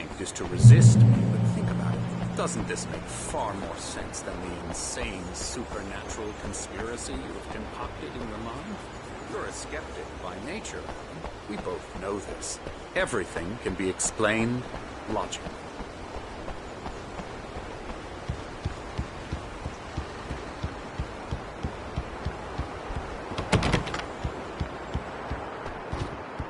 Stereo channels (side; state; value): both; identical; correlation 1.00